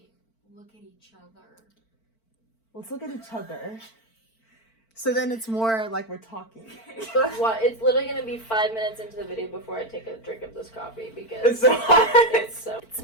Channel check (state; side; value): late; right; 4.5 ms